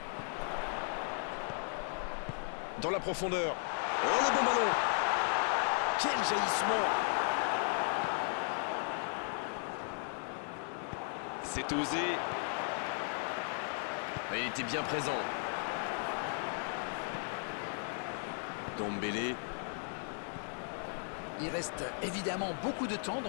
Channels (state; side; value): silent; right; 54 dB below the other